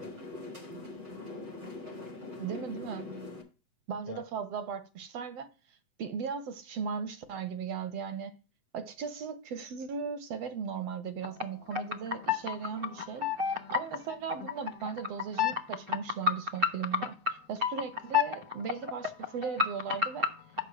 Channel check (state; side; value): late; left; 7.9 ms